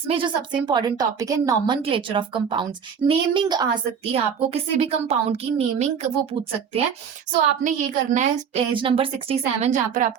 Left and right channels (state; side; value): quieter; left; 7.1 dB